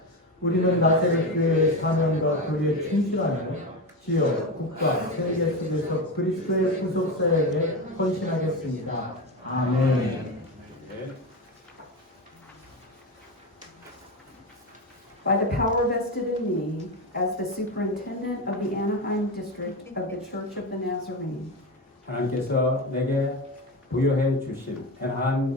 우리는 나세렛 교회의 사명과 교회에 충실하며 지역, 국가, 세계 속에서 그리스도의 구속 사역에 헌신하겠습니다. 아멘. By the power vested in me as the superintendent of the Anaheim district of the Church of the Nazarene, 하나님께서 내게 부여해 주신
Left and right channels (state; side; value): normal; both; correlation 0.19